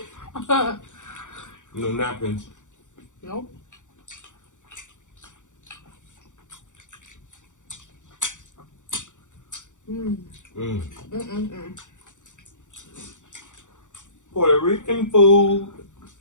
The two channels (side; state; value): right; late; 0.86 ms